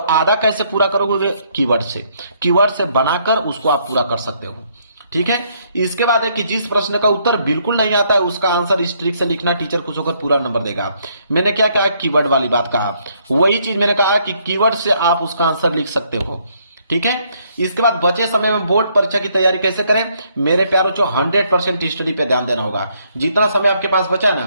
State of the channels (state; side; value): inverted; both; correlation -0.70